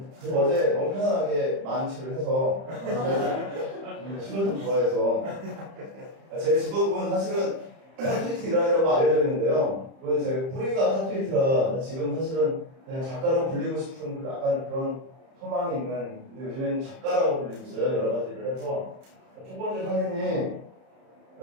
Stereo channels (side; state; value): left; late; 30 ms